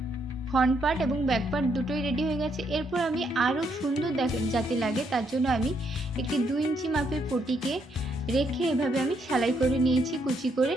ফ্রন্ট পার্ট এবং ব্যাক পার্ট দুটোই রেডি হয়ে গেছে। এরপর আমি আরও সুন্দর যাতে লাগে তার জন্য আমি একটি 2 ইঞ্চি মাপের পটিকে রেখে এভাবে আমি সেলাই করে নিয়েছি কুচি করে।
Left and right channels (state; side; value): normal; both; correlation 0.75